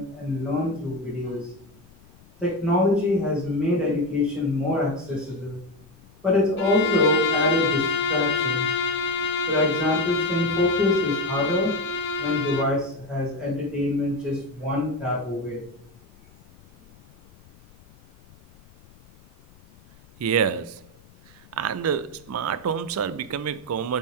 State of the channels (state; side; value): noise; left; rumble, 26 dB below the sound